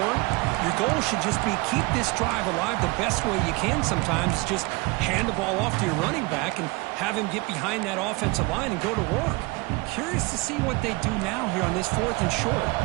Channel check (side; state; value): left; quieter; 25.2 dB